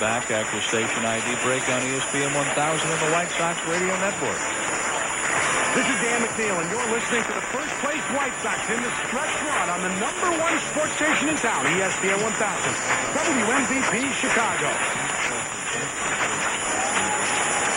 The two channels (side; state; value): both; identical; correlation 1.00